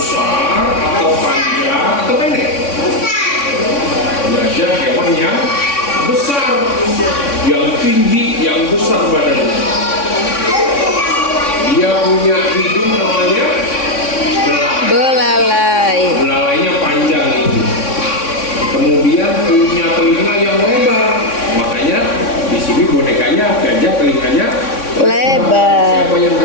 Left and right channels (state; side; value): late; right; 3.6 ms